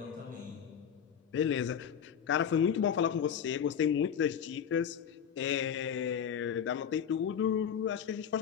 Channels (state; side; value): quieter; right; 8.1 dB